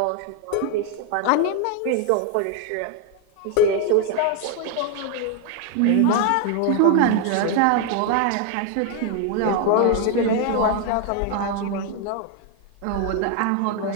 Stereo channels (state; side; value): different; both; correlation 0.01